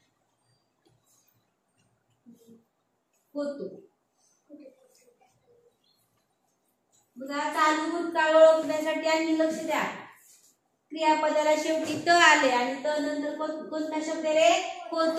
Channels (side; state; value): both; identical; correlation 1.00